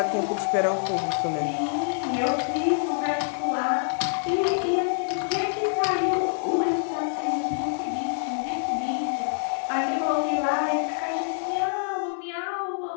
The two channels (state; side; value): silent; right; 61 dB below the other